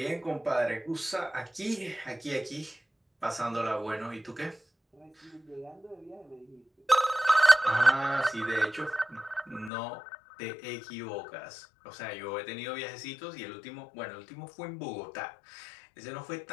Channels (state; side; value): drops out; right; at 9.7 s